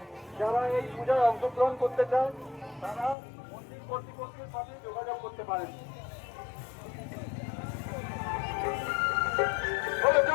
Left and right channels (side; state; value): right; drops out; at 3.2 s